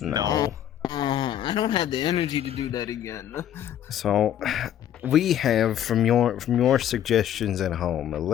I don't have the energy to do that again. So, we have from your suggestions at home a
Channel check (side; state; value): right; quieter; 10.7 dB